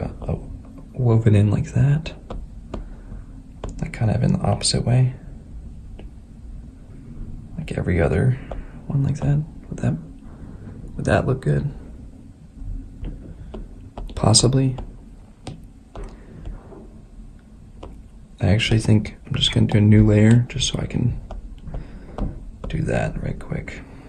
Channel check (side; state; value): both; identical; correlation 1.00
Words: woven in like that. Like kind of in the opposite way. Like every other one like that. Would that look good? Possibly. I actually think I'm just going to do a new layer just so I can do that right quick.